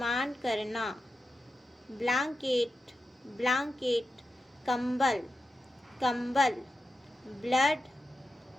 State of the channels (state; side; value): normal; both; correlation 0.90